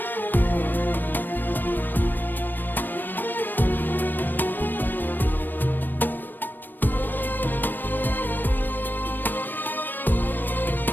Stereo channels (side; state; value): right; late; 0.092 ms